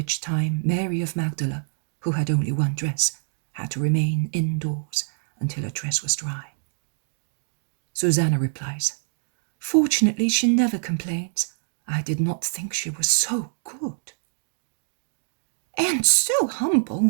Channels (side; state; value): left; silent; 62 dB below the other